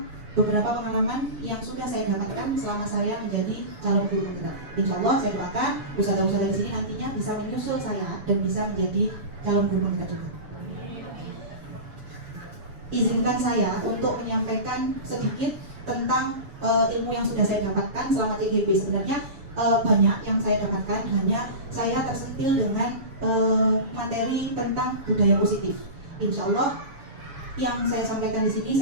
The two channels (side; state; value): left; late; 7.0 ms